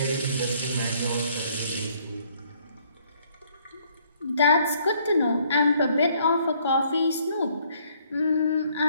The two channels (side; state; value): both; inverted; correlation -0.65